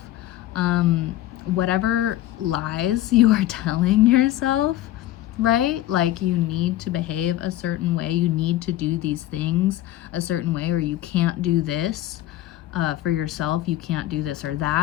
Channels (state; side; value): quieter; right; 14.2 dB